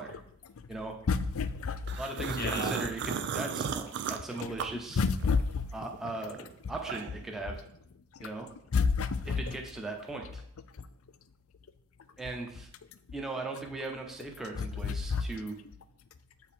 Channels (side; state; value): both; normal; correlation 0.61